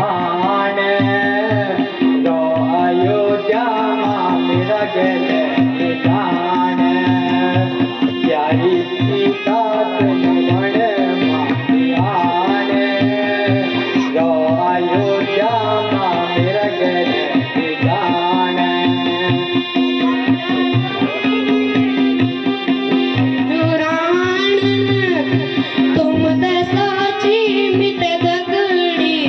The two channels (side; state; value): both; identical; correlation 1.00